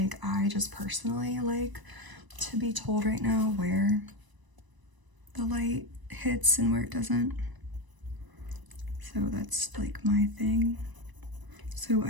I just personally like to be told right now where the light hits and where it doesn't. So that's like my thing. So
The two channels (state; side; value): late; left; 1.0 ms